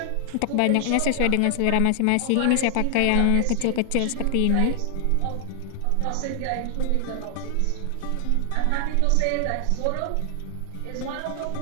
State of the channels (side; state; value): both; different; correlation 0.00